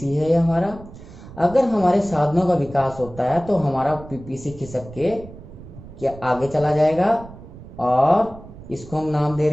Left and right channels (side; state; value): right; noise; rumble, 17 dB below the sound